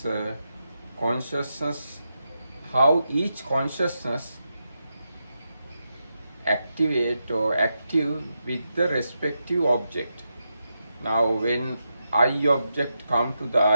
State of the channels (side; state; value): both; inverted; correlation -0.86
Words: consciousness, how each consciousness activate or active with the respective object. Now when eye object come to the